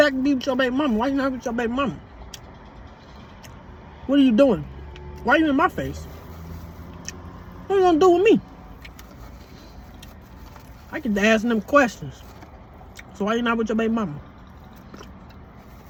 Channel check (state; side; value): identical; both; correlation 1.00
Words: and be with your baby mama. Why you not with your baby mama? What are you doing? Why are you in my face? What you gonna do with me? I get to ask them questions. So why you not with your baby mama?